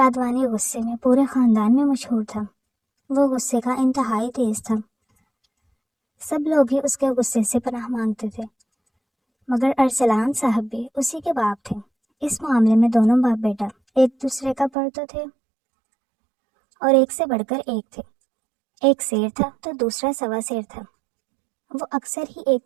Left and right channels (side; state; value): left; drops out; at 14.7 s